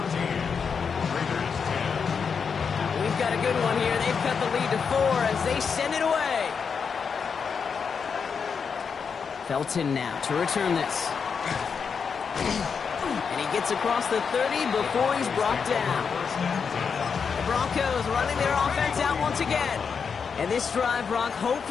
We've got a good one here. They've cut the lead to 4 as they send it away. Felton now to return this. And he gets across the 30 before he's brought down. The Broncos running their offense out once again. And this drive, Brock,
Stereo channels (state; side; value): quieter; right; 6.1 dB